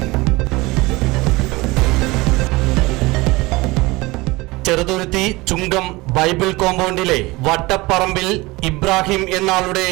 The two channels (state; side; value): quieter; left; 22.1 dB